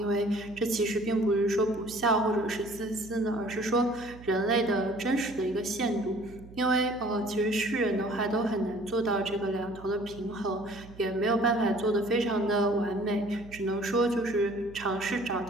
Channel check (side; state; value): right; noise; hum, 19 dB below the sound